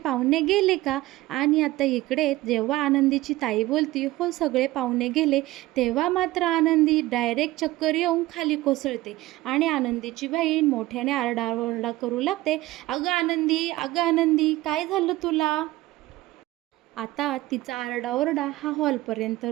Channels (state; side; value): quieter; left; 17.8 dB